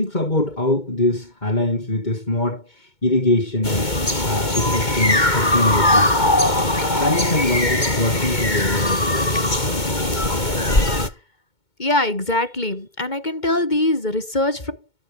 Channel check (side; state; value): right; late; 2.2 ms